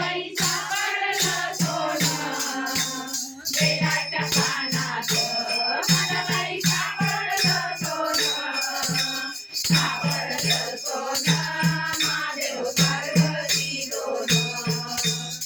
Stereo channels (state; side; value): identical; both; correlation 1.00